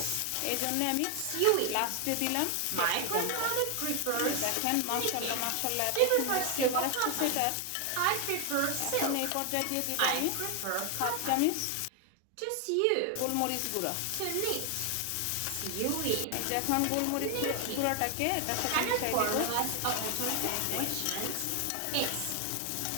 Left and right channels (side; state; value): both; different; correlation 0.00